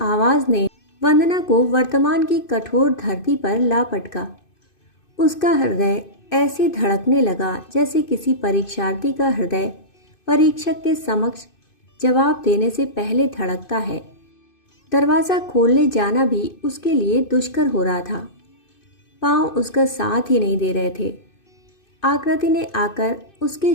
आवाज़ ने वंदना को वर्तमान की कठोर धरती पर ला पटका। उसका हृदय ऐसे धड़कने लगा जैसे किसी परीक्षार्थी का हृदय परीक्षक के समक्ष जवाब देने से पहले धड़कता है। दरवाज़ा खोलने जाना भी उसके लिए दुष्कर हो रहा था। पाँव उसका साथ ही नहीं दे रहे थे। आकृति ने आकर उसके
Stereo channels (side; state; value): right; late; 2.5 ms